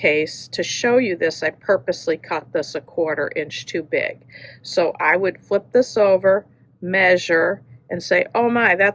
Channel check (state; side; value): identical; both; correlation 1.00